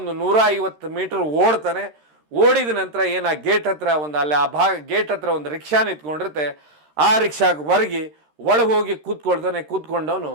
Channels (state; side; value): late; left; 13 ms